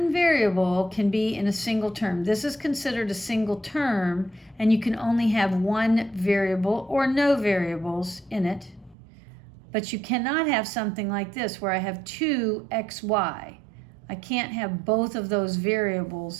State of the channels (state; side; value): drops out; left; at 9.0 s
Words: variable can be in a single term. This is considered a single term, and you can only have one variable or no variables in it. But you cannot have something like this where I have 2xy. I can't have both of those